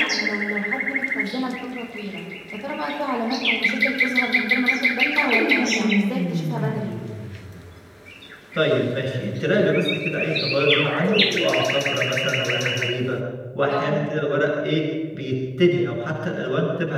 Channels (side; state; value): both; identical; correlation 1.00